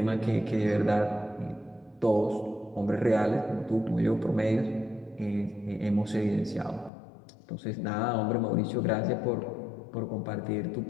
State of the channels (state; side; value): drops out; right; at 6.9 s